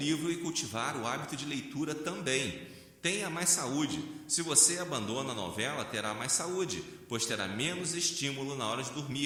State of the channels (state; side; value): identical; both; correlation 1.00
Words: e cultivar o hábito de leitura também. Tenha mais saúde. Se você abandona a novela, terá mais saúde, pois terá menos estímulo na hora de